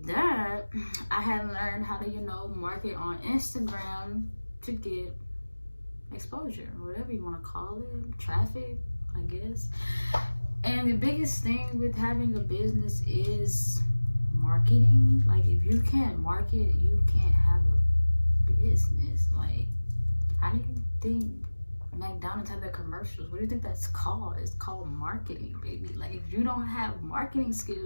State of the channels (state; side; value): inverted; both; correlation -1.00